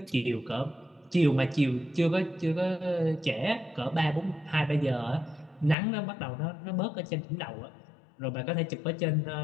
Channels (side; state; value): right; drops out; at 5.8 s